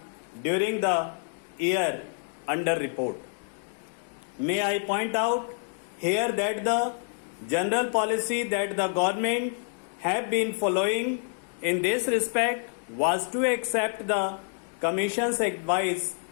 during the year under report. May I point out here that the general policy that the government have been following in this respect was to accept the Commission's advice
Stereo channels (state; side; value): silent; right; 56 dB below the other